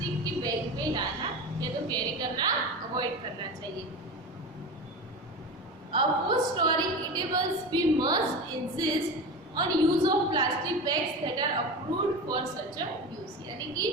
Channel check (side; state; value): both; normal; correlation 0.27